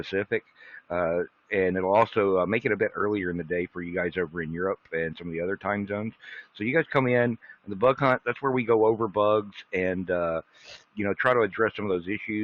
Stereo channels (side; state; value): both; identical; correlation 1.00